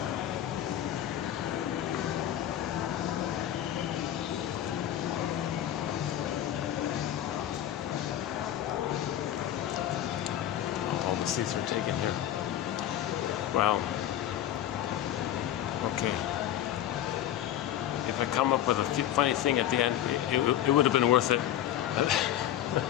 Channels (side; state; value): right; quieter; 11.8 dB